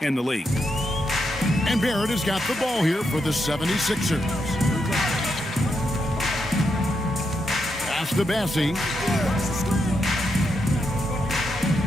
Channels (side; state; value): both; normal; correlation 0.82